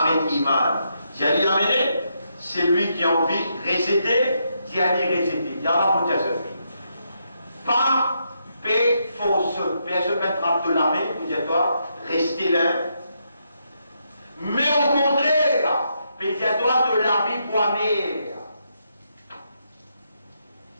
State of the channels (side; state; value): both; inverted; correlation -0.79